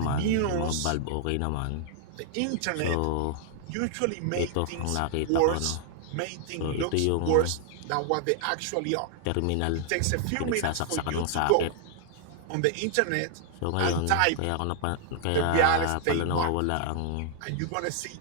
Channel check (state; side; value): different; both; correlation 0.00